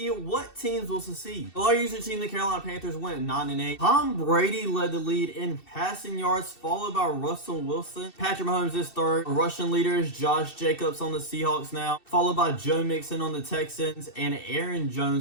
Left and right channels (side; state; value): right; late; 2.7 ms